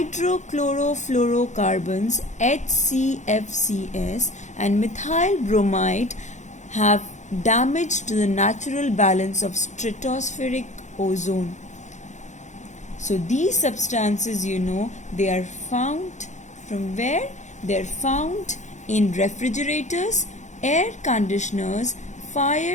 HCFCs, and methyl bromide have damaged the natural balance of stratospheric ozone. So these substances, they are found from where? They are found in refrigerators, air conditioners,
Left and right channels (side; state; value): right; late; 0.34 ms